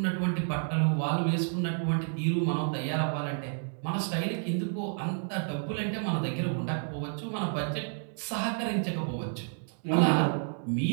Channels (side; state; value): left; silent; 58 dB below the other